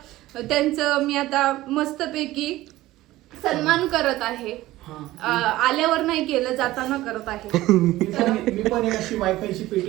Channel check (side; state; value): left; quieter; 16.7 dB